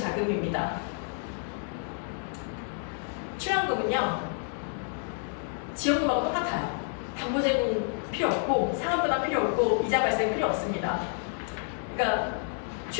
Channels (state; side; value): silent; right; 56 dB below the other